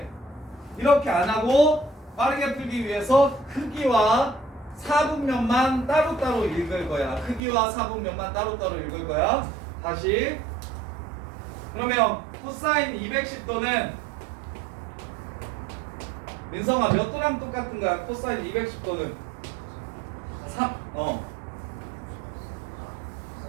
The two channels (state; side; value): drops out; left; at 7.4 s